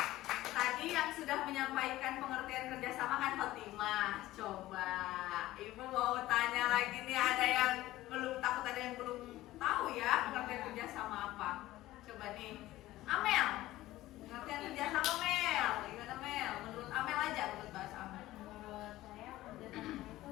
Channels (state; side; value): quieter; right; 16.2 dB